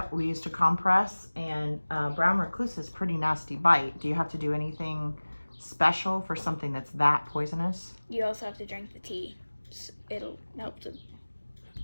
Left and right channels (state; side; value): inverted; both; correlation -1.00